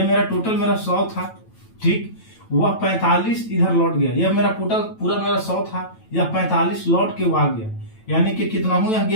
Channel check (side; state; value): right; late; 9.1 ms